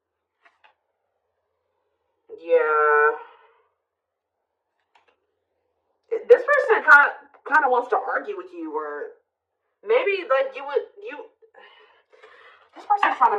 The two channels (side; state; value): both; identical; correlation 1.00